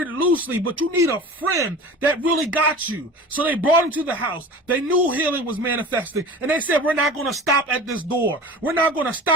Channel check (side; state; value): both; normal; correlation 0.37